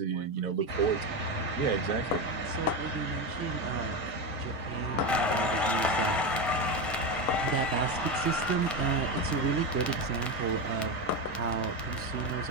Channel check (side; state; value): both; normal; correlation 0.15